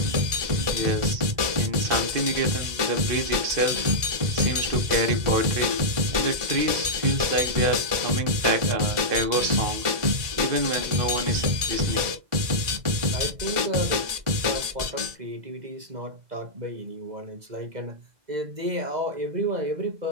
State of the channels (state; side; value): late; left; 2.0 ms